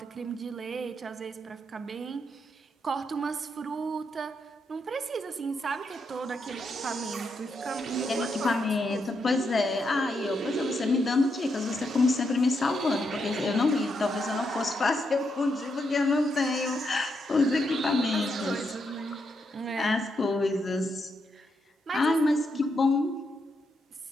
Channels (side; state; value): both; normal; correlation 0.81